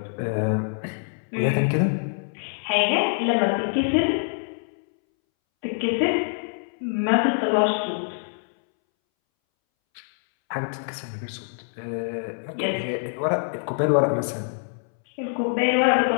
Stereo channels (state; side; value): silent; right; 62 dB below the other